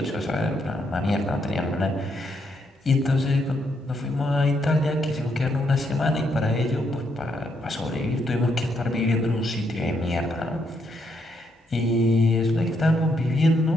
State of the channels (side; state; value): both; normal; correlation 0.76